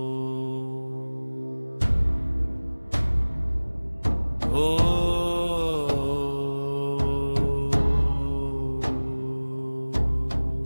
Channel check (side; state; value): both; inverted; correlation -1.00